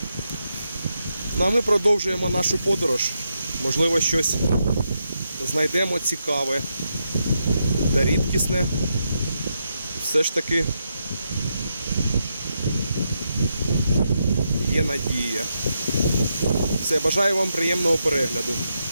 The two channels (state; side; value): inverted; both; correlation -0.83